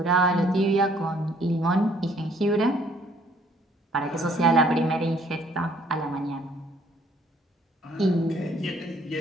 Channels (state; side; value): normal; both; correlation 0.61